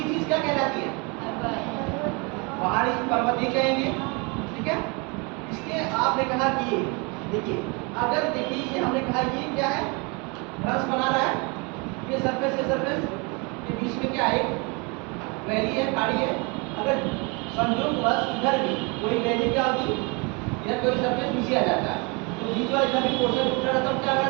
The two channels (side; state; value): left; quieter; 30.4 dB